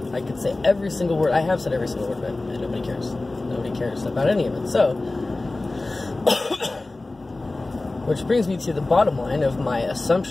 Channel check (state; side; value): quieter; right; 3.0 dB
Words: I could say every single word. I have said every single word, but nobody cares. Nobody cares about any of it. So, which brings me to the bottom line of my